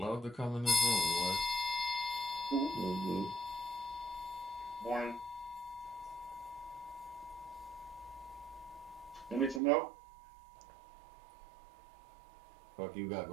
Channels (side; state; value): left; drops out; at 9.6 s